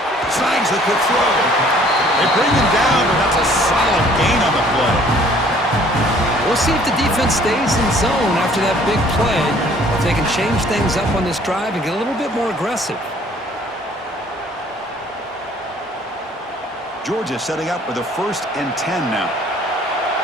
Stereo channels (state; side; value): normal; both; correlation 0.57